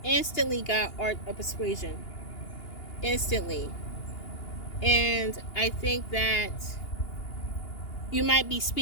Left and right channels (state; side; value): late; right; 2.8 ms